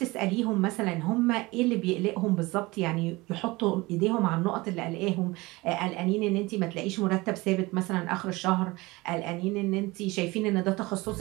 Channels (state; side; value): quieter; left; 22.0 dB